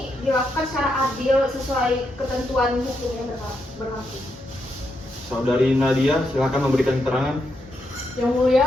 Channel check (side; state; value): both; normal; correlation 0.81